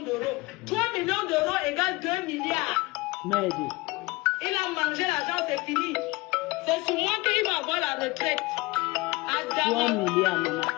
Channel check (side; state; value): right; quieter; 22.1 dB